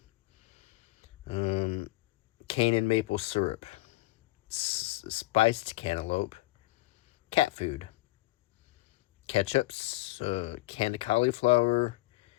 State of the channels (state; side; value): quieter; right; 19.4 dB